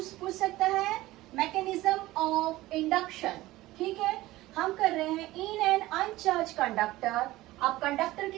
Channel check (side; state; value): left; quieter; 17.6 dB